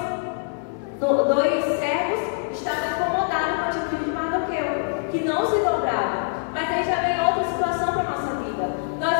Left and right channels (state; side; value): silent; right; 63 dB below the other